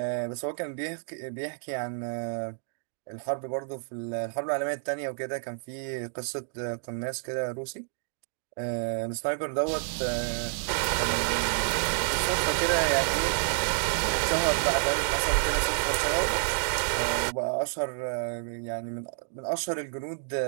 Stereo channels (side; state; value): left; silent; digital silence